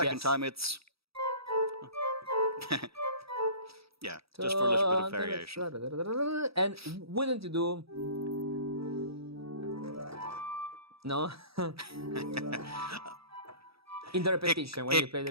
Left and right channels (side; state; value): left; late; 0.77 ms